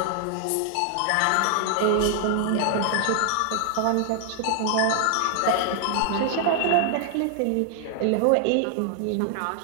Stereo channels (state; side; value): different; both; correlation 0.00